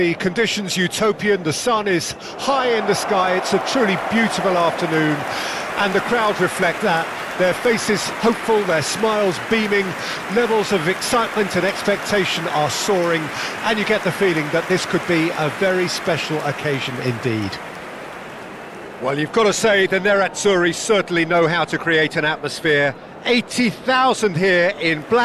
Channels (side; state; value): both; identical; correlation 1.00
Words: conditions utopian, the sun is high in the sky, it's a truly beautiful afternoon, and the crowd reflect that. Their faces hopeful, their smiles beaming, levels of excitement and expectation are soaring, and you get the feeling that this could be a very special occasion indeed. Well, you've got to say the Nerazzurri certainly know how to create an atmosphere. 80,000 here in